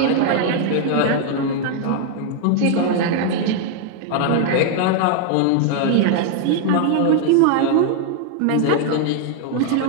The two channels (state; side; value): different; both; correlation 0.00